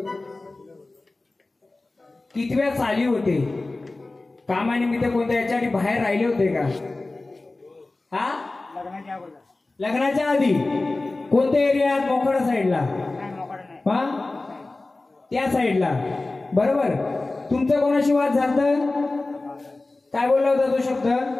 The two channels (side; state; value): right; quieter; 3.2 dB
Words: कितव्या साली होते कामानिमित्त कोणत्या याच्यासाठी बाहेर राहिले होते का हा लग्नाच्या आधी कोणत्या एरियात मोकळा साईडला हा त्या साईडला बरोबर तुमचं कोणाशी वाद झालता काय बोलला होता तो शब्द